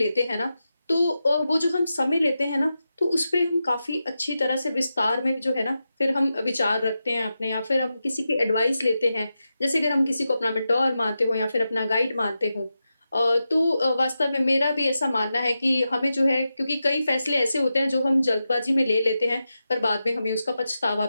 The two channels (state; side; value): inverted; both; correlation -0.90